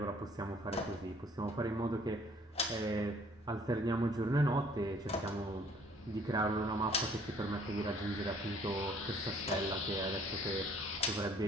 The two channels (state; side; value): normal; both; correlation 0.58